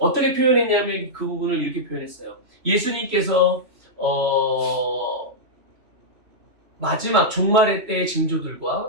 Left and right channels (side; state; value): left; late; 3.1 ms